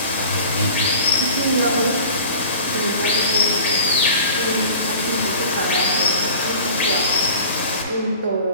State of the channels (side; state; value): both; inverted; correlation -0.42